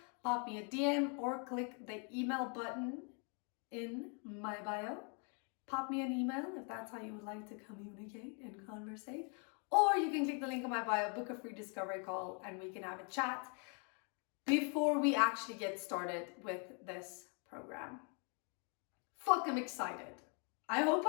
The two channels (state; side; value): quieter; right; 38.1 dB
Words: pop me a DM, or click the email button in my bio. Pop me an email if that's how you would like to communicate and conversate. Or you can click the link in my bio, book a free discovery call, and we can have a chat before we actually get started with this program. Fuck, I'm excited. I hope